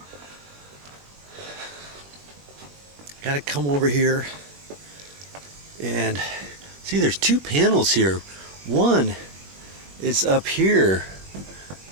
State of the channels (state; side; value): late; left; 21 ms